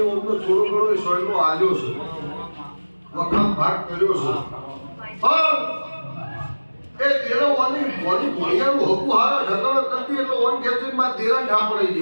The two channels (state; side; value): inverted; both; correlation -1.00